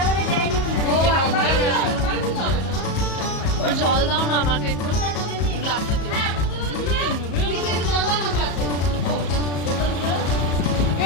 জল দাও না আমাকে একটু, গ্লাসে দিও।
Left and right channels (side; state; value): right; late; 34 ms